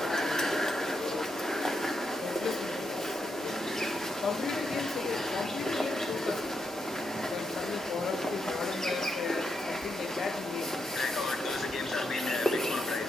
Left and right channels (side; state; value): both; normal; correlation 0.82